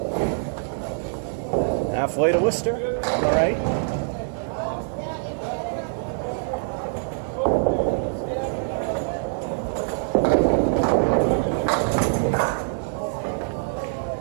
Halfway to Worcester, all right.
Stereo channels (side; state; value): left; silent; digital silence